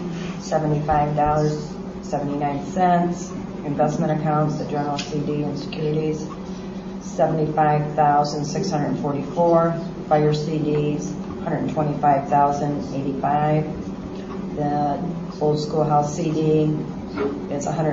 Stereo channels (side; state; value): both; identical; correlation 1.00